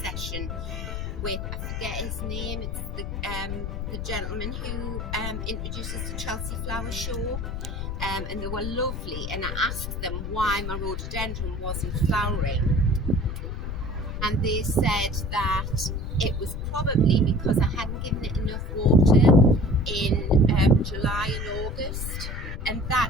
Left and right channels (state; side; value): noise; left; rumble, 4 dB below the sound